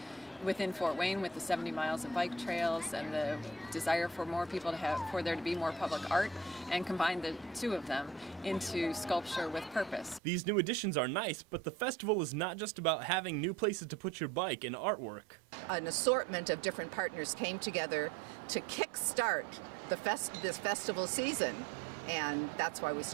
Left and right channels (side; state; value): left; drops out; at 10.2 s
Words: within Fort Wayne with the 70 miles of bike trails and the desire for more people for there to be more public art, and combined the two of them into sculpture with purpose. These new additions are nice, but the festival is not just about having new places to put your bike and artwork. An assortment of different partners came together to kickstart this festival season, and that's why we